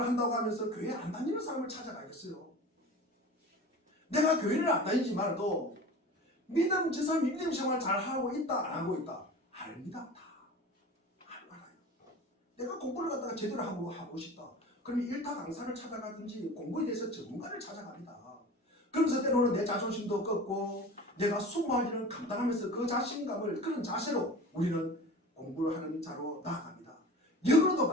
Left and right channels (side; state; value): both; normal; correlation 0.37